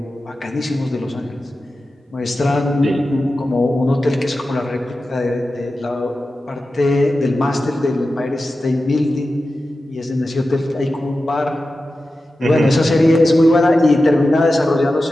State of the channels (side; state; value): both; normal; correlation 0.93